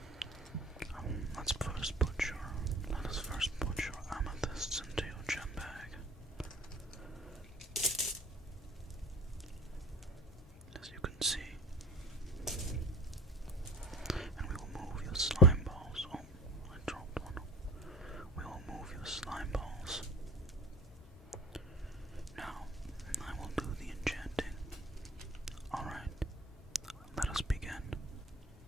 Let us first put your amethysts into your gem bag. As you can see. And we will move your slime balls. Oh, I dropped one. We will move your slime balls. Now, I will do the enchanting. Alright, let us begin.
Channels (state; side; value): normal; both; correlation 0.40